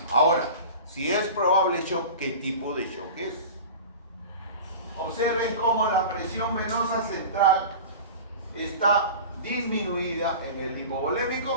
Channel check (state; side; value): inverted; both; correlation -0.34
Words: Ahora, si es probable shock, ¿qué tipo de shock es? Observen cómo la presión venosa central está disminuida en el